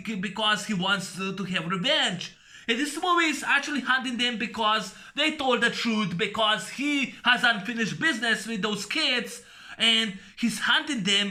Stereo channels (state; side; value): identical; both; correlation 1.00